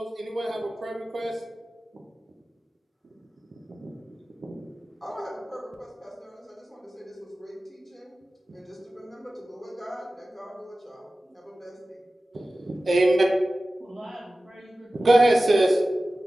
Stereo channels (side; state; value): both; normal; correlation 0.96